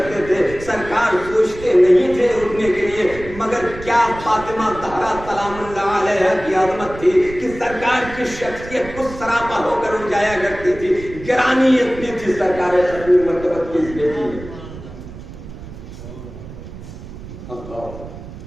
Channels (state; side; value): noise; right; rumble, 14 dB below the sound